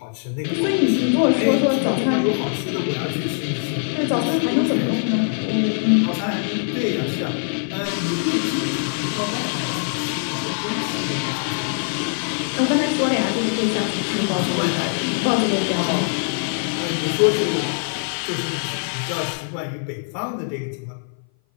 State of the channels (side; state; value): right; silent; 58 dB below the other